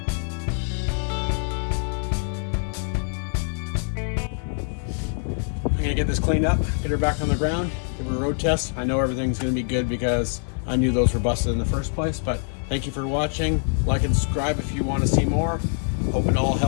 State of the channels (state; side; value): silent; right; 58 dB below the other